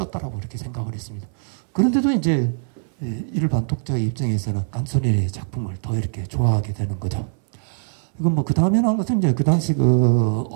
이렇게 생각을 했습니다. 그런데도 이제 일반 독자의 입장에서는 깐소니의 작품을 더 이렇게 좋아하게 되는 거죠. 이건 뭐 그 다음에 나온 것은 이제 그 당시 그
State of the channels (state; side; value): silent; left; 64 dB below the other